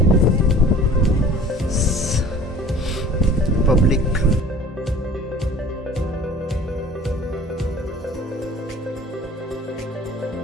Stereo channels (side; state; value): both; normal; correlation 0.46